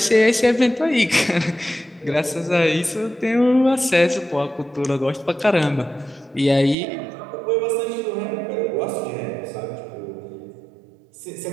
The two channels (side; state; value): left; drops out; at 6.8 s